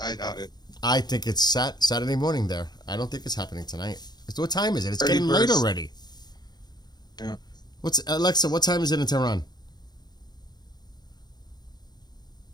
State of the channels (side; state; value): right; late; 0.20 ms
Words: I doubt it. I think it's Saturday morning there. I don't think it's happening tonight. What time is it? It's 31st. getting late already. Yeah. Alexa, what time is it in Tehran?